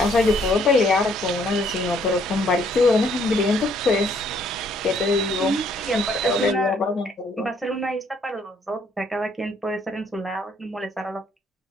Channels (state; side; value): normal; both; correlation 0.67